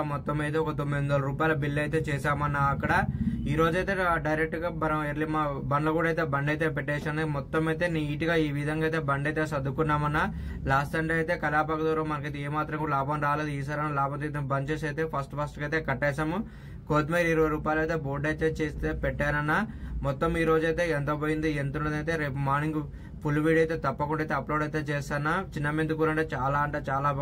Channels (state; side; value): identical; both; correlation 1.00